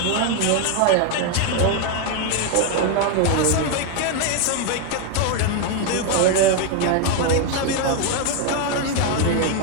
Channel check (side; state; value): both; different; correlation 0.01